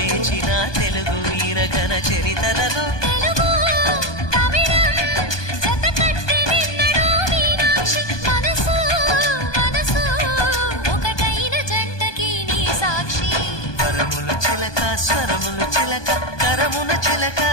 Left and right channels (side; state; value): right; late; 1.2 ms